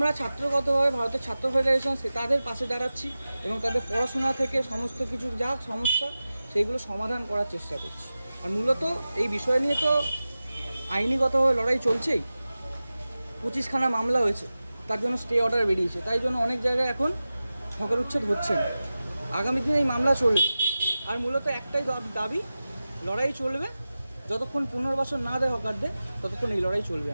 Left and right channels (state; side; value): inverted; both; correlation -0.95